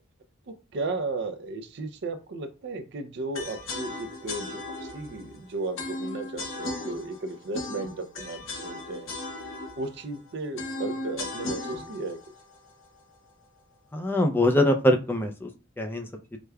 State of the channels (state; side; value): normal; both; correlation 0.48